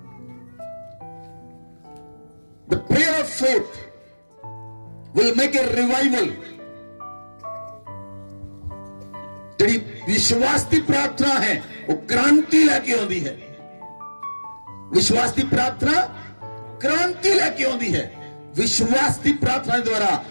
The prayer of faith will make a revival। ਜਿਹੜੀ ਵਿਸ਼ਵਾਸ ਦੀ ਪ੍ਰਾਰਥਨਾ ਹੈ ਉਹ ਕ੍ਰਾਂਤੀ ਲੈ ਕੇ ਆਉਂਦੀ ਹੈ। ਵਿਸ਼ਵਾਸ ਦੀ ਪ੍ਰਾਰਥਨਾ ਕ੍ਰਾਂਤੀ ਲੈ ਕੇ ਆਉਂਦੀ ਹੈ। ਵਿਸ਼ਵਾਸ ਦੀ ਪ੍ਰਾਰਥਨਾ ਦੇ ਦੁਆਰਾ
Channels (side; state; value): both; inverted; correlation -1.00